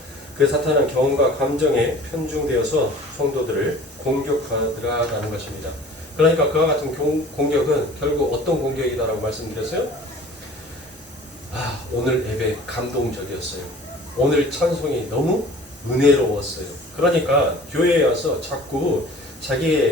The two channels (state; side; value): normal; both; correlation 0.46